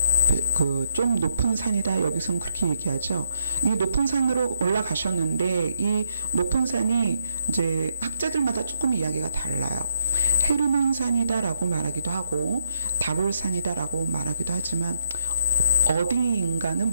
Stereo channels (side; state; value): both; inverted; correlation -0.75